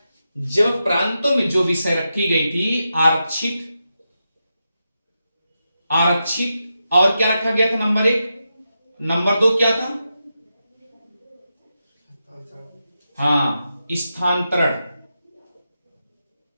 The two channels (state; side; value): inverted; both; correlation -0.88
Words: जब प्रांतों में जो विषय रखी गई थी आरक्षित, आरक्षित और क्या रखा गया था? नंबर 1, नंबर 2 क्या था? हाँ, स्थानांतरण,